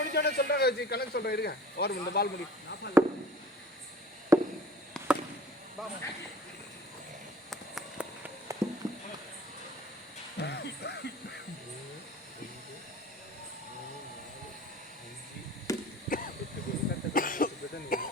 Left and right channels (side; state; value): both; normal; correlation 0.45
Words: சொல்றாங்க கணக்கு சொல்றேன் இருங்க. ஓவர் இந்த பால் முடி